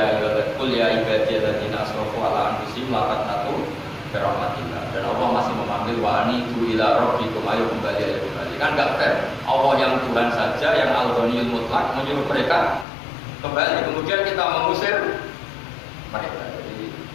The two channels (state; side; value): drops out; right; at 12.9 s